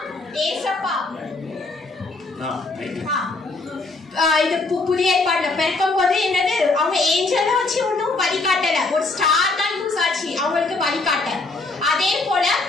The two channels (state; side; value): quieter; right; 3.4 dB